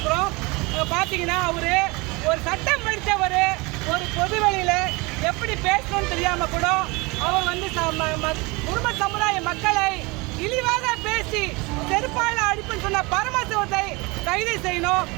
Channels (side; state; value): left; quieter; 25.7 dB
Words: பார்த்தீங்கன்னா அவரு ஒரு சட்டம் படித்தவர் ஒரு பொது வெளியில் எப்படி பேசணும்னு தெரியாமல் கூட அவர் வந்து குடும்ப சமுதாய மக்களை இழிவாக பேசி செருப்பால அடிப்புன்னு சொன்ன பரமசிவத்தை கைது செய்யணும்.